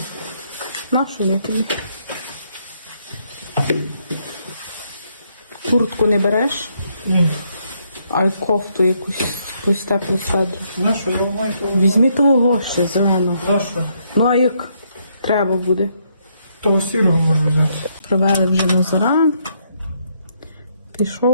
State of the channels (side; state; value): both; inverted; correlation -0.74